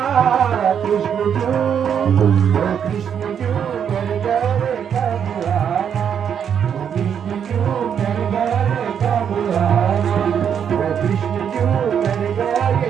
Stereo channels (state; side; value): quieter; left; 8.1 dB